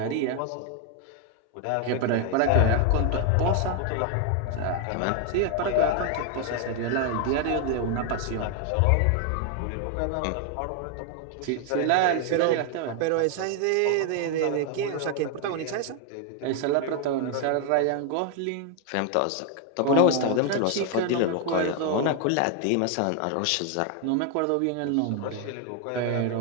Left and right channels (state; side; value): different; both; correlation 0.00